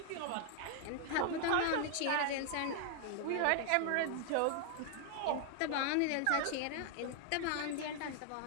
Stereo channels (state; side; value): different; both; correlation 0.00